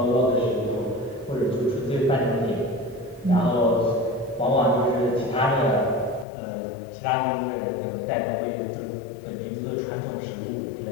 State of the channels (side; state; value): right; drops out; at 6.2 s